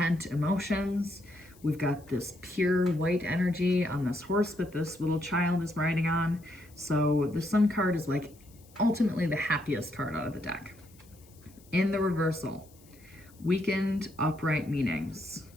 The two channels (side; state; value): left; noise; hiss, 27 dB below the sound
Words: emotions. We've got this pure white energy on this horse that this little child is riding on. So the Sun card is like ultimately the happiest card out of the deck. In the reversal, weakened upright meanings,